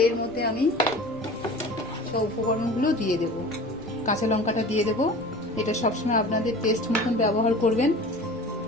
এর মধ্যে আমি সব উপকরণগুলো দিয়ে দেব। কাঁচা লঙ্কাটা দিয়ে দেব, এটা সবসময় আপনাদের টেস্ট মতন ব্যবহার করবেন।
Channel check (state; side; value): normal; both; correlation 0.39